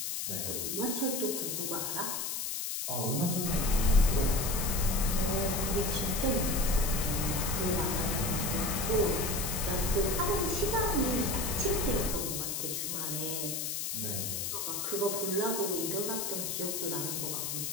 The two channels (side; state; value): left; noise; hiss, 2 dB below the sound